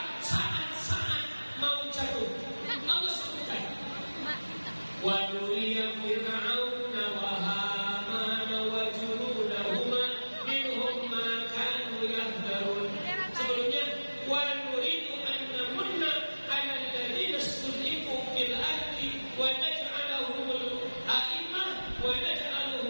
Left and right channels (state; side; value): inverted; both; correlation -1.00